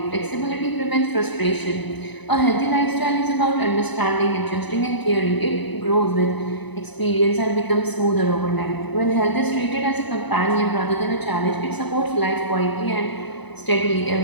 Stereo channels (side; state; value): right; late; 1.0 ms